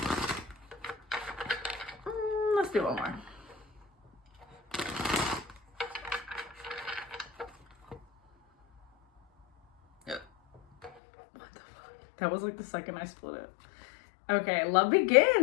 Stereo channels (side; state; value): right; drops out; at 10.9 s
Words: Let's do one more. That was like the second I split it. Okay, love